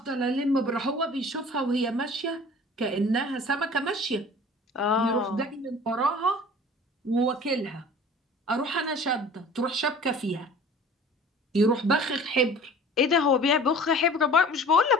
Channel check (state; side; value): normal; both; correlation 0.45